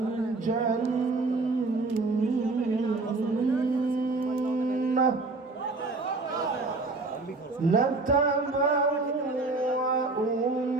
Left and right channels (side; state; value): left; quieter; 3.5 dB